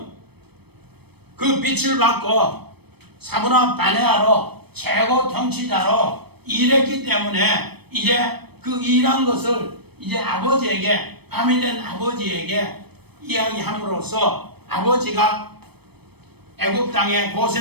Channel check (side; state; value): left; late; 0.97 ms